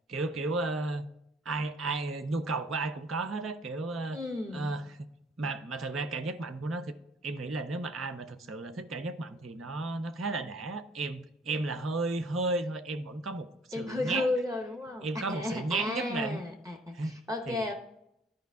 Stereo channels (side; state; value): both; normal; correlation 0.57